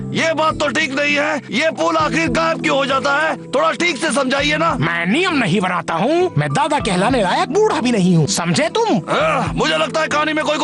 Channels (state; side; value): identical; both; correlation 1.00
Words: ये बात तो ठीक नहीं है। ये पुल आखिर गायब क्यों हो जाता है? थोड़ा ठीक से समझाइए ना। मैं नियम नहीं बनाता हूँ, मैं दादा कहलाने लायक बूढ़ा भी नहीं हूँ। समझे तुम? मुझे लगता है कहानी में कोई